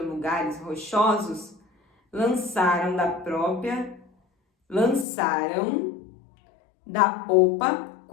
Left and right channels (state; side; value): drops out; right; at 5.1 s